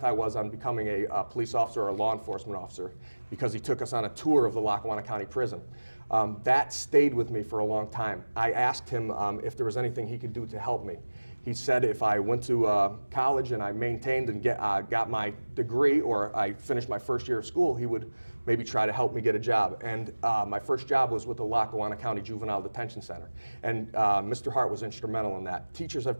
I was on becoming a police officer or a law enforcement officer because he took us on a tour of the Lackawanna County Prison. That stayed with me for a long time. I asked him if there was anything he could do to help me. He said if I went to college and I maintained and got my degree, or I finished my first year of school, he would maybe try to help me get a job. And my first job was with the Lackawanna County Juvenile Detention Center. And Mr. Hart was instrumental in that. Teachers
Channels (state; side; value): inverted; both; correlation -1.00